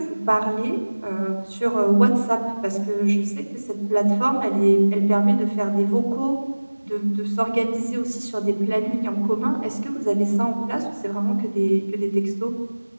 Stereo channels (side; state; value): both; inverted; correlation -1.00